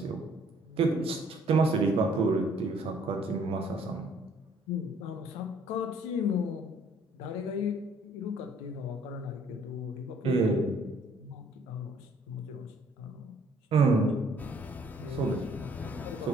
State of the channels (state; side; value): normal; both; correlation 0.61